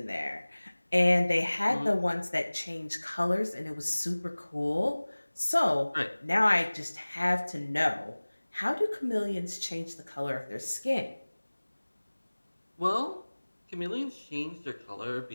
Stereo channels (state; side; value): inverted; both; correlation -1.00